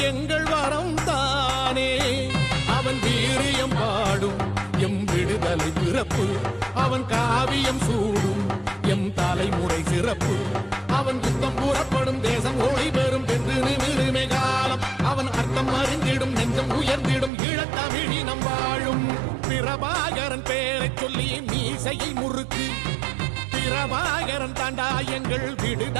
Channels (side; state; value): left; drops out; at 17.3 s